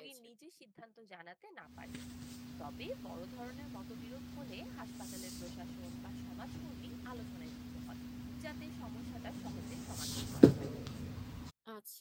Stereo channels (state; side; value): identical; both; correlation 1.00